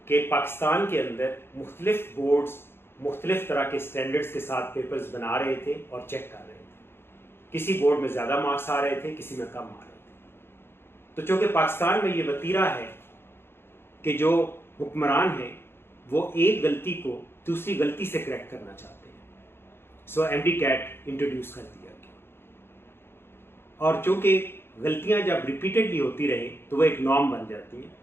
कि पाकिस्तान के अंदर मुख्तलिफ बोर्ड्स मुख्तलिफ तरह के स्टैंडर्ड्स के साथ पेपर्स बना रहे थे और चेक कर रहे थे। किसी बोर्ड में ज़्यादा मार्क्स आ रहे थे, किसी में कम आ रहे थे। तो चूँकि पाकिस्तान में ये वतीरा है कि जो हुक्मरान हैं वो एक गलती को दूसरी गलती से करेक्ट करना चाहते हैं, सो एमडी कैट इंट्रोड्यूस कर दिया गया। और चूँकि गलतियाँ जब रिपीटेडली होती रहे तो वो एक नॉर्म बन जाती हैं,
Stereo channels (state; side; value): late; right; 0.11 ms